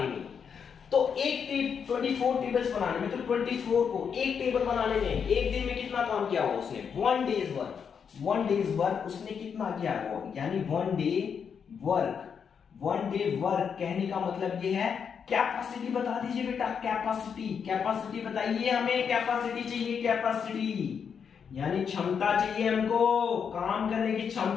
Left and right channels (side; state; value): right; quieter; 6.9 dB